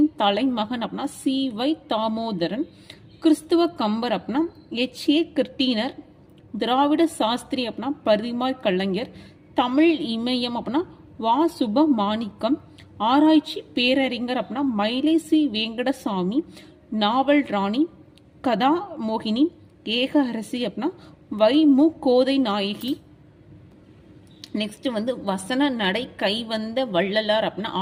தலைமகன் அப்படின்னா சி.வை. தாமோதரன். கிறிஸ்துவ கம்பர் அப்படின்னா எச்.ஏ. கிருட்டினர். திராவிட சாஸ்திரி அப்படின்னா பரிமாய் கலைஞர். தமிழ் இமயம் அப்படின்னா வா. சுபமாணிக்கம். ஆராய்ச்சி பேரறிஞர் அப்படின்னா மயிலை சி. வெங்கடசாமி. நாவல் ராணி கதா மோகினி. ஏக அரசி அப்படின்னா வை. மு. கோதை நாயகி. நெக்ஸ்ட் வந்து வசன நடை கைவந்த வள்ளலார் அப்படின்னா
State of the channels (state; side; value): identical; both; correlation 1.00